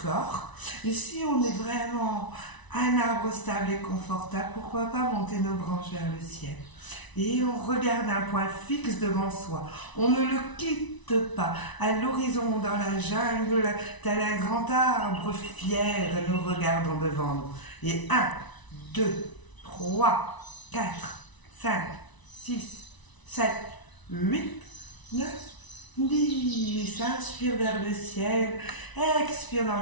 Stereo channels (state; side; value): late; right; 1.0 ms